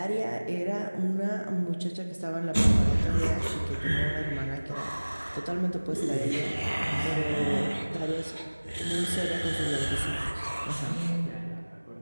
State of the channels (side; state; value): both; inverted; correlation -1.00